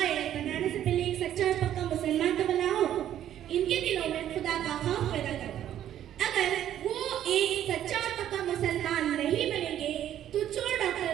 बनाने से पहले एक सच्चा और पक्का मुसलमान तो बनाओ। इनके दिलों में खुदा का खौफ पैदा करो। अगर वो एक सच्चा और पक्का मुसलमान नहीं बनेंगे तो चोर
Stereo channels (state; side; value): quieter; left; 11.2 dB